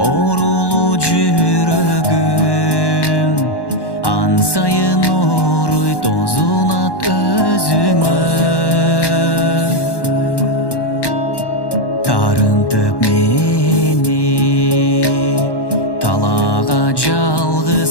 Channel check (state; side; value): late; right; 1.1 ms